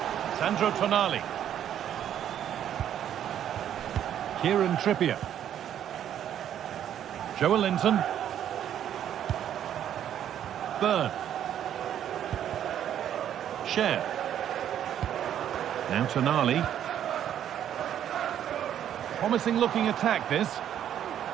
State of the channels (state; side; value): quieter; left; 10.2 dB